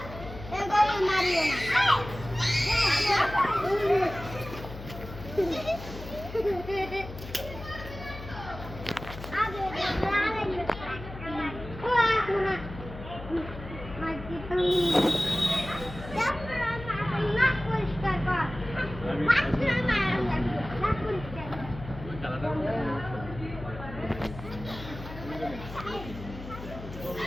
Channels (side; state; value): left; noise; hum, 12 dB below the sound